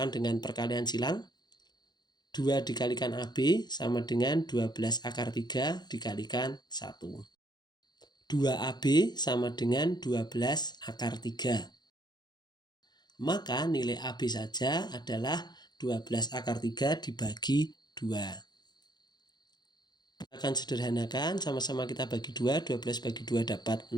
dengan perkalian silang. 2 dikalikan AB sama dengan 12 akar 3 dikalikan 1. 2AB sama dengan 12 akar 3. Maka nilai AB saja adalah 12 akar 3 dibagi 2. Akan sederhanakan, sama-sama kita bagi 2, 12 bagi 2 dapat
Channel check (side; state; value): right; late; 0.21 ms